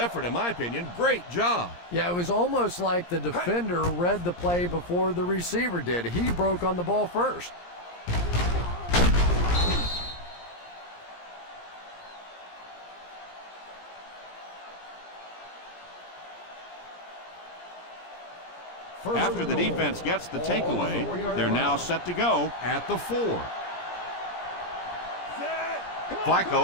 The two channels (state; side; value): late; right; 17 ms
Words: in my opinion. Great job. Yeah, it was almost like the defender read the play before the receiver did. He broke on the ball first. After the defense gets the takeaway, they're now set to go at the 4.